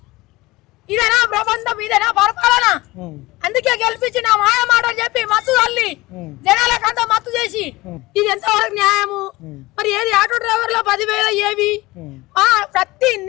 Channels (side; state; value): right; quieter; 20.4 dB